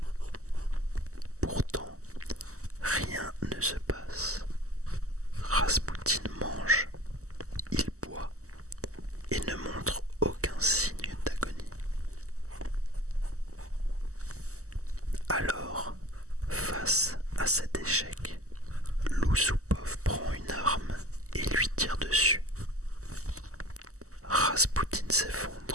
Pourtant, rien ne se passe. Raspoutine mange, il boit et ne montre aucun signe d'agonie. Alors, face à cet échec, Loussoupov prend une arme et lui tire dessus. Raspoutine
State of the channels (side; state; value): left; late; 0.65 ms